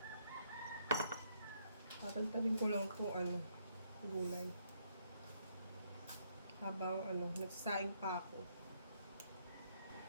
Tatantarin ko lang kung gulay. Habang nagsasaing pa ako.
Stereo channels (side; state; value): both; inverted; correlation -0.72